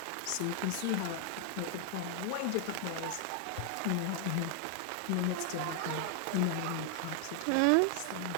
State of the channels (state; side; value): different; both; correlation 0.00